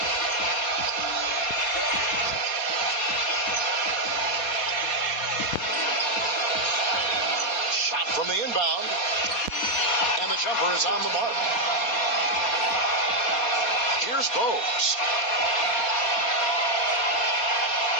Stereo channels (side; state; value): right; late; 4.2 ms